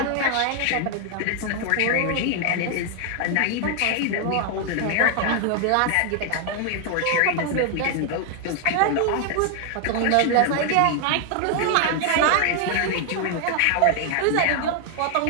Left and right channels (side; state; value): both; different; correlation 0.00